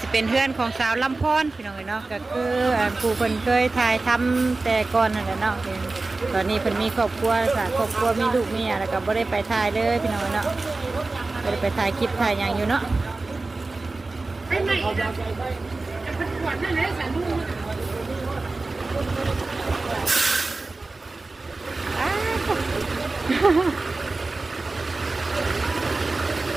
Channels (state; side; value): quieter; left; 3.4 dB